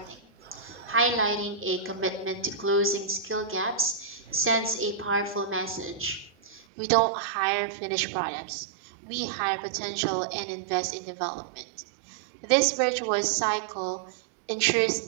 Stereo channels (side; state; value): left; drops out; at 6.7 s